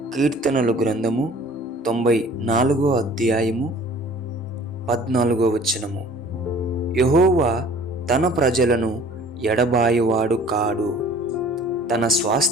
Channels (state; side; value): normal; both; correlation 0.49